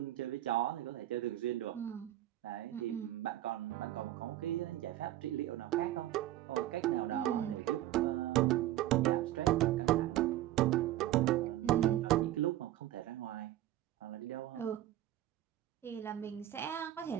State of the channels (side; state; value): left; quieter; 14.0 dB